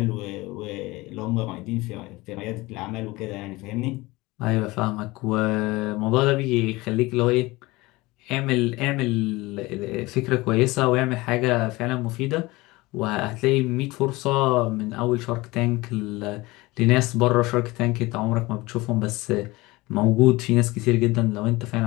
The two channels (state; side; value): quieter; right; 21.4 dB